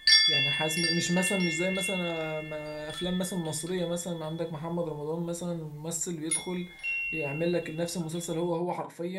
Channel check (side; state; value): both; identical; correlation 1.00